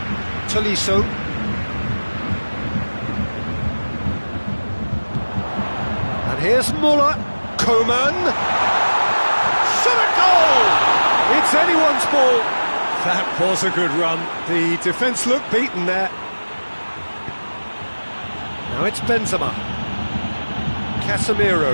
Tolisso. And here's Muller. Coman. Shot a goal! It's anyone's ball. That was a good run. The defence looked beaten there. Now it's Benzema.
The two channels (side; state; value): both; inverted; correlation -1.00